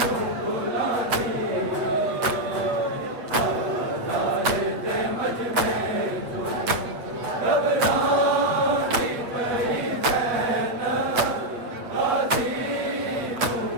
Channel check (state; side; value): late; left; 7.9 ms